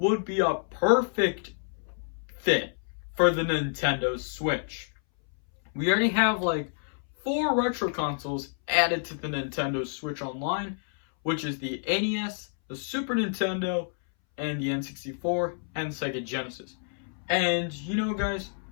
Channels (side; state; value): right; silent; 59 dB below the other